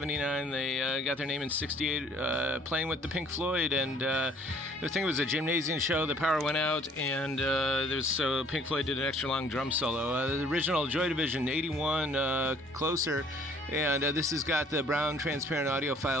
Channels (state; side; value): normal; both; correlation 0.57